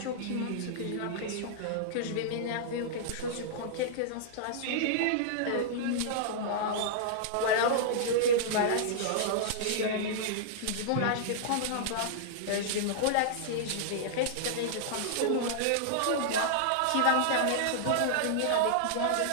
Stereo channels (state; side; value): different; both; correlation -0.02